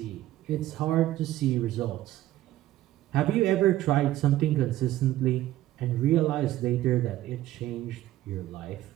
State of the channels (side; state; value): left; quieter; 14.5 dB